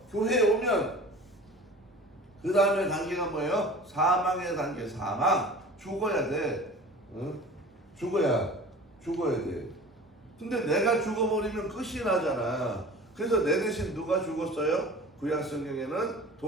교회에 오면 그 다음에 단계가 뭐예요? 사망의 단계. 사망. 죽어야 돼. 응? 죽어야 돼. 근데 내가 죽어버리면 끝이 나잖아. 그래서 내 대신 누가 죽었어요? 구약 성경에는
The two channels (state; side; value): normal; both; correlation 0.41